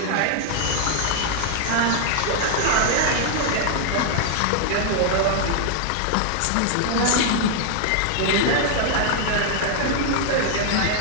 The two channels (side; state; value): both; different; correlation 0.00